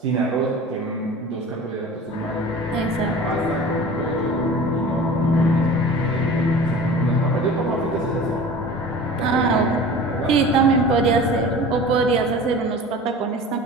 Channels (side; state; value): both; normal; correlation 0.39